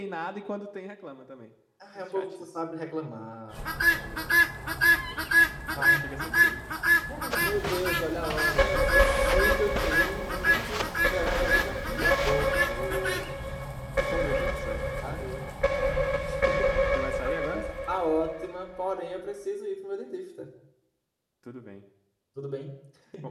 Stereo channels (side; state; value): both; identical; correlation 1.00